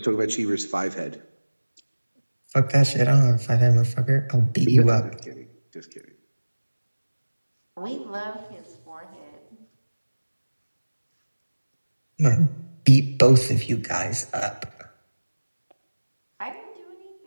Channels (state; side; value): inverted; both; correlation -1.00